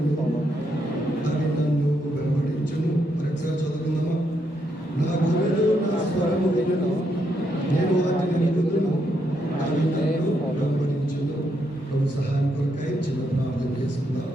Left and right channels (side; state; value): both; normal; correlation 0.78